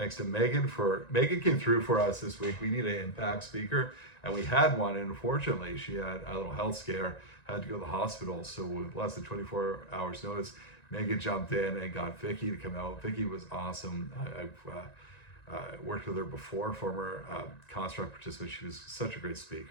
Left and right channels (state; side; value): late; right; 1.9 ms